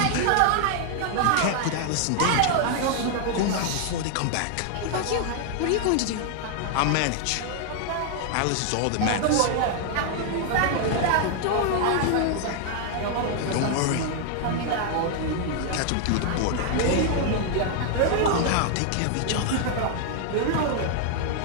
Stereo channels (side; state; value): both; different; correlation 0.00